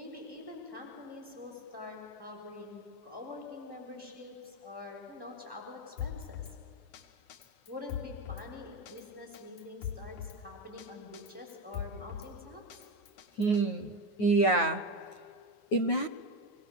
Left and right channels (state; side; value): late; right; 9.4 ms